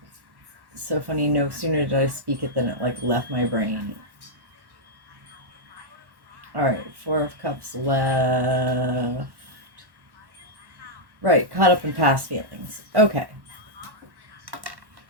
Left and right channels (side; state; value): left; late; 1.1 ms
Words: So funny, no sooner did I speak it than it like left my brain. All right, Four of Cups left. Right, caught up in past feelings. Okay.